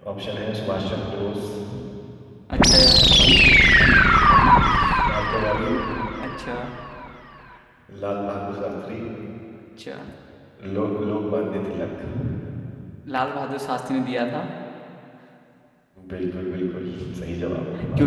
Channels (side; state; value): both; identical; correlation 1.00